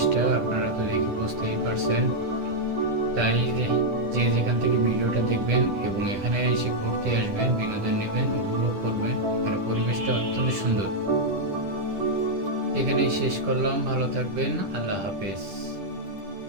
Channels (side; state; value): left; late; 10 ms